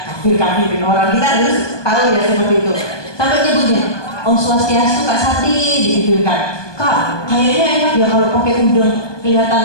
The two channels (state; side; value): late; right; 1.2 ms